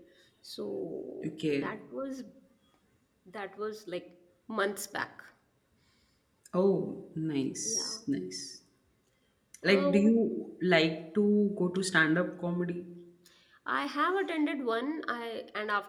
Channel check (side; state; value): both; identical; correlation 1.00